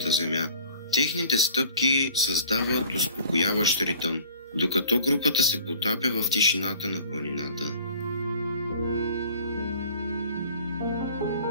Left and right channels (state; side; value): inverted; both; correlation -0.49